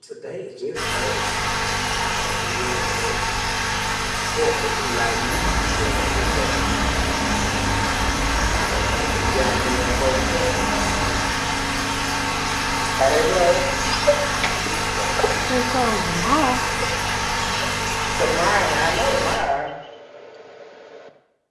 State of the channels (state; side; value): identical; both; correlation 1.00